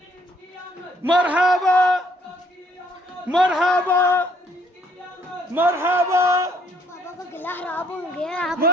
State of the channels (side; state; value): both; normal; correlation 0.65